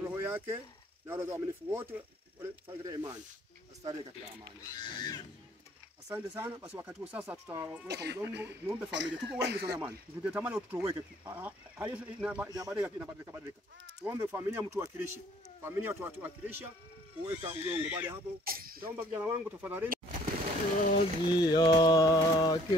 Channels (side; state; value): both; normal; correlation 0.59